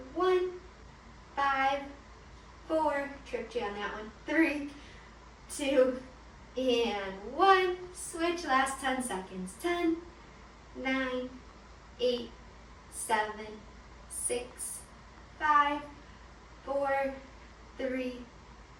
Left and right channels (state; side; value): identical; both; correlation 1.00